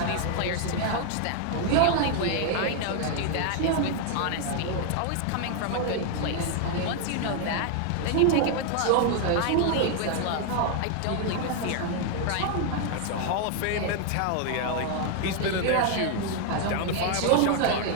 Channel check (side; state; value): both; different; correlation 0.00